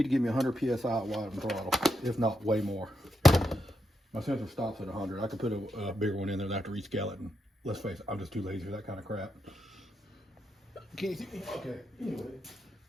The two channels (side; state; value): both; normal; correlation 0.83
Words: to give me 100 psi at wide and throttle, if not way more. My sensor stops at 100. I could put a bigger one in there, and I have to rescale it, and let's face it, I'm just too lazy for that kind of crap. Can you see me? Okay, anyway,